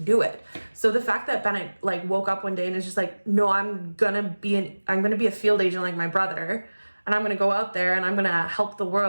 it. So the fact that Bennett like woke up one day and is just like, no, I'm gonna be a field agent like my brother, and I'm gonna go out there and I'm gonna help the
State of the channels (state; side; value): inverted; both; correlation -1.00